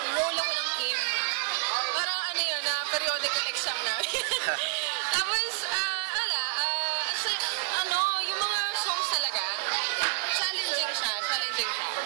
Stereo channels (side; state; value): left; silent; digital silence